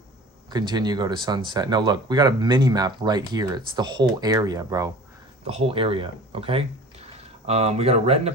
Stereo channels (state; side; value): normal; both; correlation 0.41